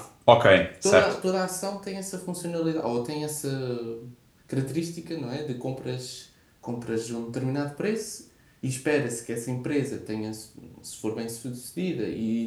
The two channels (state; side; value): identical; both; correlation 1.00